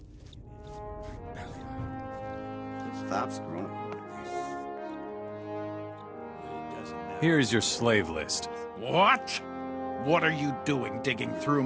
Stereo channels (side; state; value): both; identical; correlation 1.00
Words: Stop screwing. Here's your slave list. What? What are you doing digging through